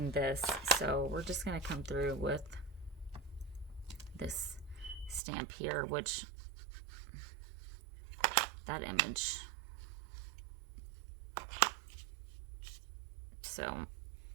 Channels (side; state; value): left; drops out; at 5.2 s